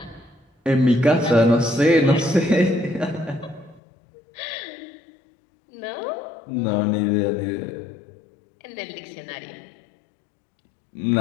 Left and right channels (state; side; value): drops out; right; at 3.8 s